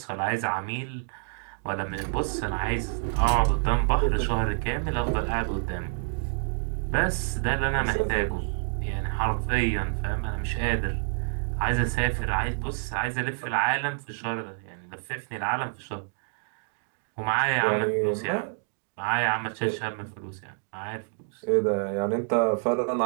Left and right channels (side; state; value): left; silent; digital silence